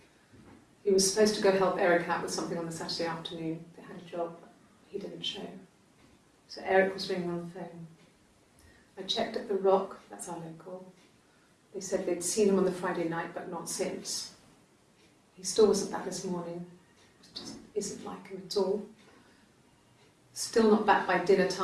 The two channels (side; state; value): both; identical; correlation 1.00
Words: He was supposed to go help Eric out with something on the Saturday afternoon. They had a job. He didn't show. So Eric was ringing on the phone. I checked at the Rock, that's our local. They said they'd seen him on the Friday night, but not since. He still wasn't back this morning. It just isn't like him at all. Still not back by dinner